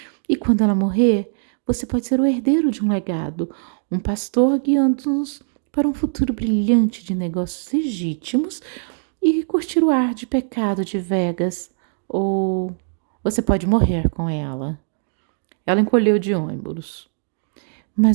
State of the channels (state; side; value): silent; left; digital silence